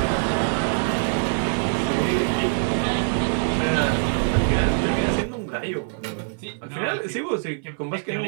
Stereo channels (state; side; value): silent; left; digital silence